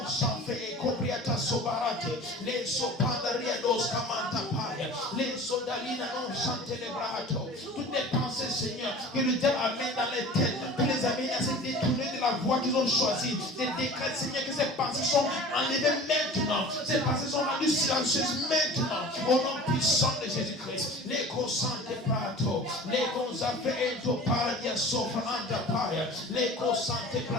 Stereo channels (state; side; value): normal; both; correlation 0.40